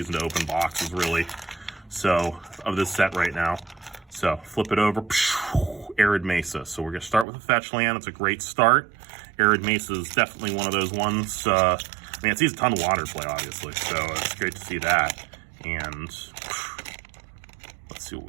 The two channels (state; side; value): drops out; left; at 7.2 s